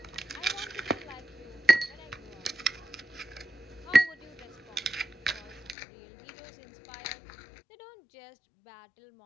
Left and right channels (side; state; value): right; drops out; at 5.8 s